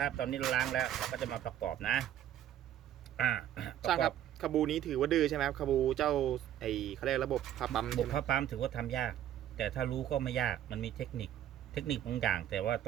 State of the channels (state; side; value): quieter; left; 11.3 dB